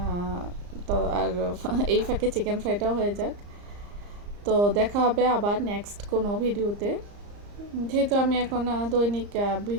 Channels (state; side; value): late; left; 34 ms